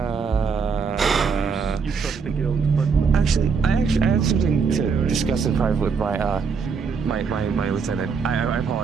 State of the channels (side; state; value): left; quieter; 5.5 dB